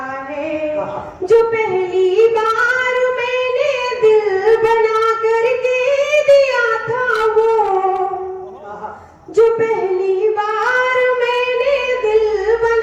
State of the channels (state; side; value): identical; both; correlation 1.00